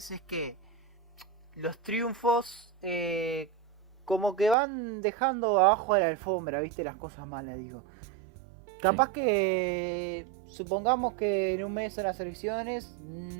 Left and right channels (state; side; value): drops out; left; at 4.5 s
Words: es que los triunfos como que van dejando abajo de la alfombra, viste, las cosas malas, digo. Capaz que supongamos que en un mes en las elecciones